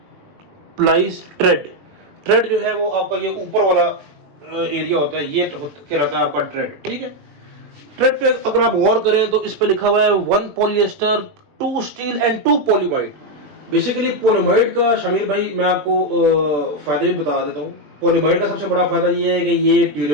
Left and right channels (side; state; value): left; late; 21 ms